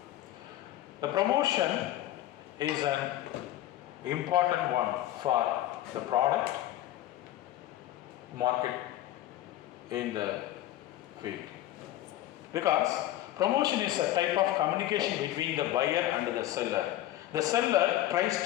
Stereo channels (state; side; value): quieter; right; 14.1 dB